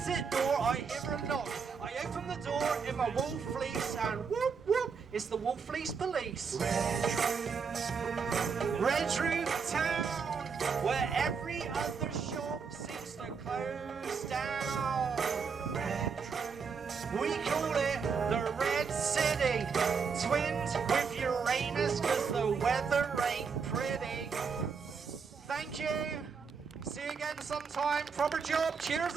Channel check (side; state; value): left; quieter; 5.8 dB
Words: door I hear a knock. I open the door in my wool fleece and whoop whoop, it's the wool fleece police. Redruth Town, where every other shop seems to close down. We call it the Red City. Twins with Uranus, cause the weather ain't pretty. Thank you. See you again sometime. Proper job. Cheers